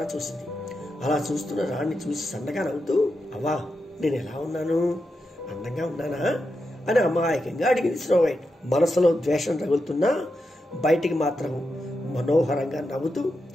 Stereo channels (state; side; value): normal; both; correlation 0.87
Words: చూసింది. అలా చూస్తున్న రాణిని చూసి సన్నగా నవ్వుతూ, అవ్వా, నేను ఎలా ఉన్నాను? అందంగా ఉన్నానా అని అమాయకంగా అడిగింది స్నోవైట్. మనసులో ద్వేషం రగులుతున్నా బయటికి మాత్రం మనోహరంగా నవ్వుతూ,